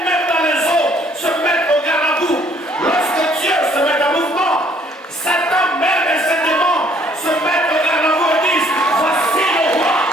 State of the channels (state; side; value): normal; both; correlation 0.62